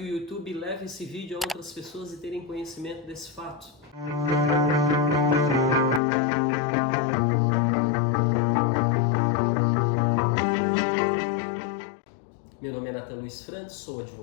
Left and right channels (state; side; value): drops out; right; at 6.0 s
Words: o YouTube leve esse vídeo a outras pessoas e terem conhecimento desse fato. Meu nome é Nathan Luiz Frantes, sou